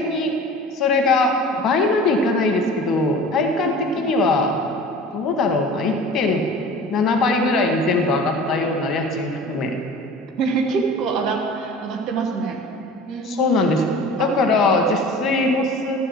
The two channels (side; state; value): both; normal; correlation 0.41